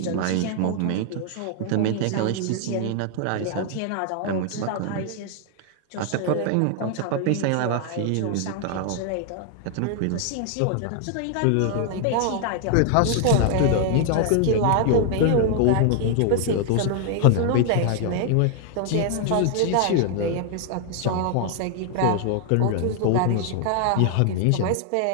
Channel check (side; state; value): both; different; correlation 0.00